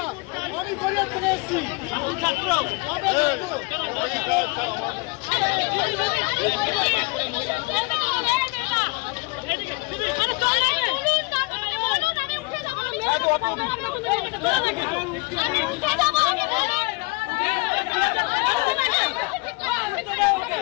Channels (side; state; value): right; quieter; 28.7 dB